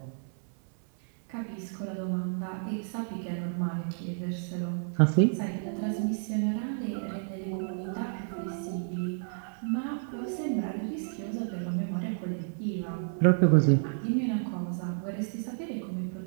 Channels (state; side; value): silent; left; digital silence